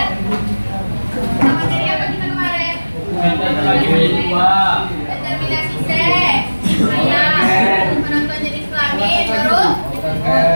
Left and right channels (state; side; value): inverted; both; correlation -1.00